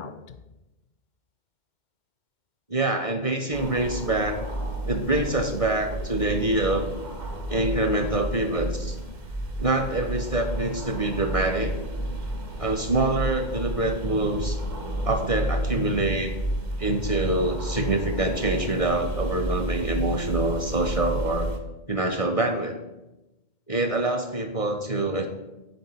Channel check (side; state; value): right; late; 1.6 ms